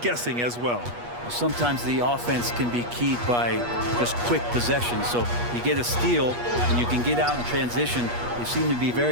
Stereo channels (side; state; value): left; late; 8.4 ms